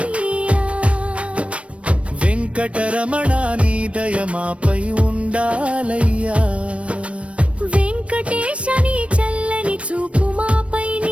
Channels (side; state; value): left; late; 0.062 ms